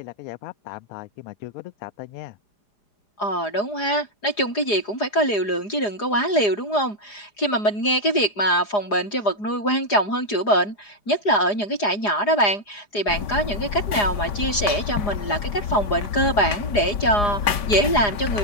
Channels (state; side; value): late; right; 4.9 ms